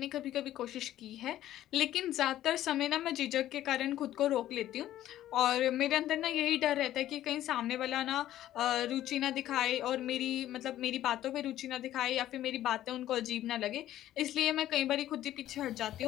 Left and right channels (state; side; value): quieter; right; 13.1 dB